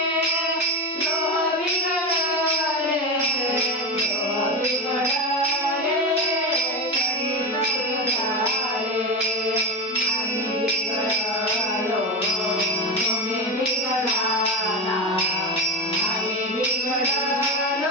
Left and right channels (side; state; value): both; normal; correlation 0.18